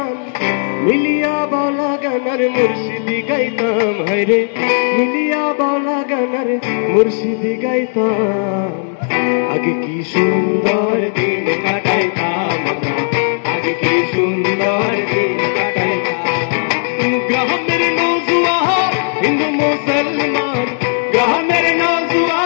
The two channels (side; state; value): right; silent; digital silence